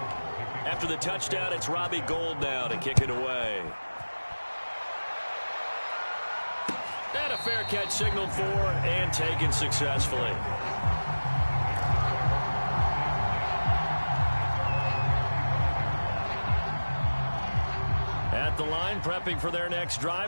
After the touchdown, it's Robbie Gould now to kick it away. And a fair catch signaled for and taken successfully. At the line, prepping for their next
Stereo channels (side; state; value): both; inverted; correlation -1.00